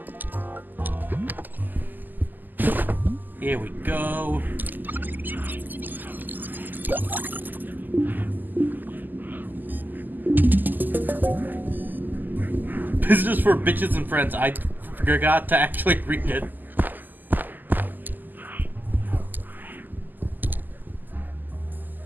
Here we go. Business for bitches and friends. I forgot to actually read it.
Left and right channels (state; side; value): late; left; 0.087 ms